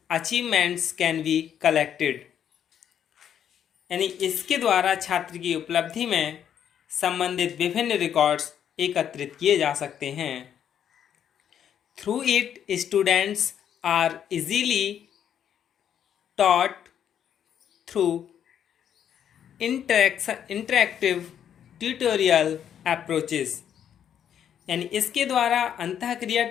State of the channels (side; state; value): right; quieter; 9.2 dB